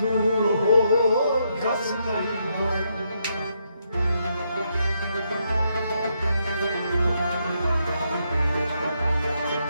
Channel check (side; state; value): both; inverted; correlation -0.78